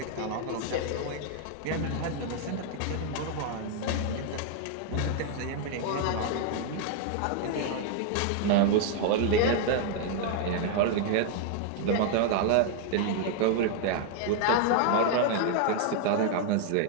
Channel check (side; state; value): both; different; correlation 0.00